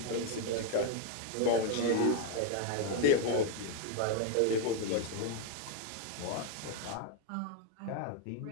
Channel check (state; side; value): different; both; correlation 0.01